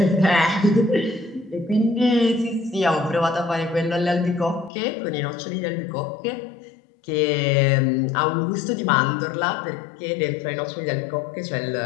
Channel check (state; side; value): drops out; right; at 4.7 s